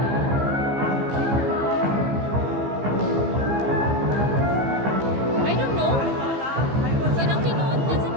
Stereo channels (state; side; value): late; left; 15 ms